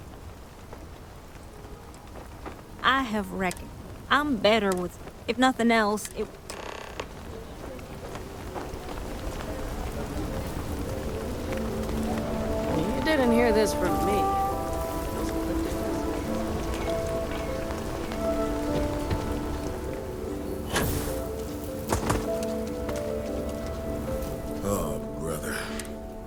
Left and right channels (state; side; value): identical; both; correlation 1.00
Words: I have reckoned. I'm better with... If nothing else, it... You didn't hear this from me. Oh, brother.